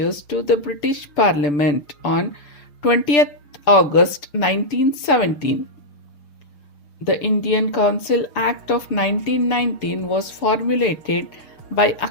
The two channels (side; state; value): right; late; 6.4 ms